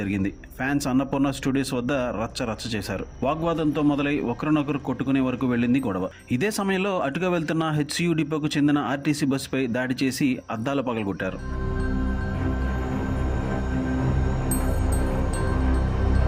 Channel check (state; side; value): identical; both; correlation 1.00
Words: ఫ్యాన్స్ అన్నపూర్ణ స్టూడియోస్ వద్ద రచ్చ చేశారు. వాగ్వాదంతో మొదలై ఒకరినొకరు కొట్టుకునే వరకు వెళ్ళింది గొడవ. ఇదే సమయంలో అటుగా వెళ్తున్న హెచ్సియు డిపోకు చెందిన ఆర్టీసీ బస్సుపై దాడి చేసి అద్దాలు పగలగొట్టారు.